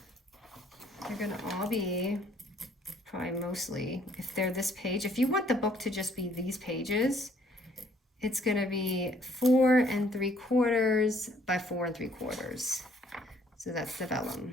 They're going to all be probably mostly, if they're this page, if you want the book to just be these pages, it's going to be 4 3/4 by 4 3/4. So that's the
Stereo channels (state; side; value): normal; both; correlation 0.63